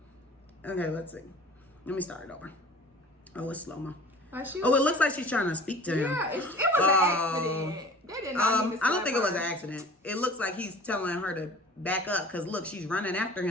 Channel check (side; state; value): both; normal; correlation 0.44